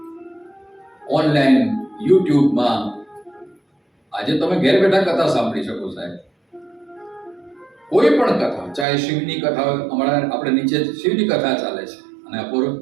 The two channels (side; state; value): left; drops out; at 8.8 s